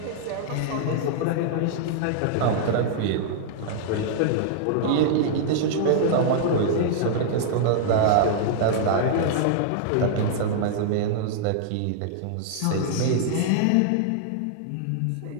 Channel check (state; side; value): different; both; correlation -0.01